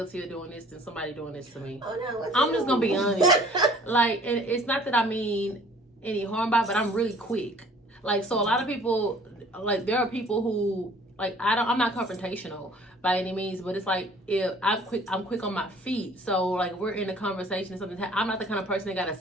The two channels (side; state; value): both; normal; correlation 0.53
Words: of doing this than somebody doing this to me. Oh, no. I'm just going to be honest. Like, and it's not that I mean any harm by it, but I'm really quick. Like, so a lot of people, like, there are people who, like, I'm not confrontational by any means, but it's like, if I'm quick on my feet. So, like, we're in a conversation and something, I'm not the kind of person that got to